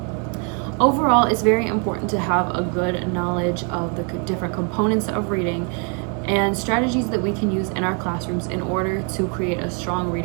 Overall, it's very important to have a good knowledge of the different components of reading and strategies that we can use in our classrooms in order to create a strong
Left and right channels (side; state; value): left; quieter; 37.4 dB